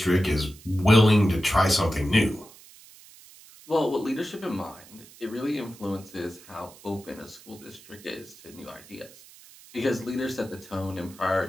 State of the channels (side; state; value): right; noise; hiss, 22 dB below the sound